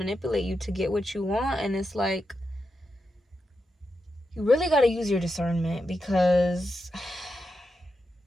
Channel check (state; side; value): normal; both; correlation 0.87